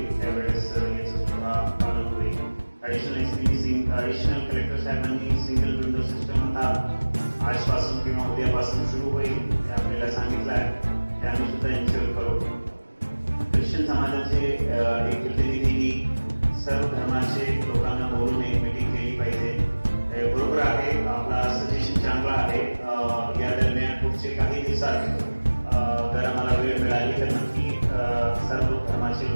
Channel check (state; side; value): inverted; both; correlation -1.00